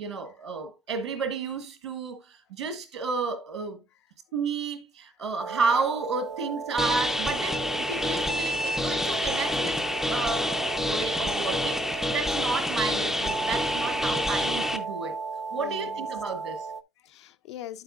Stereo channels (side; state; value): both; normal; correlation 0.69